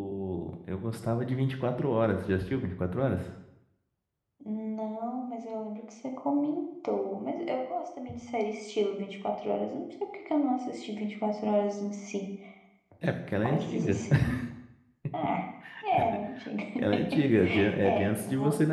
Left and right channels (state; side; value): identical; both; correlation 1.00